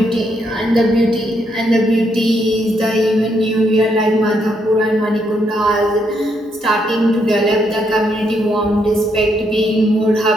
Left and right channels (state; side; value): normal; both; correlation 0.76